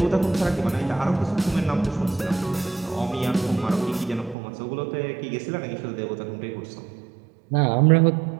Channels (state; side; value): drops out; left; at 4.4 s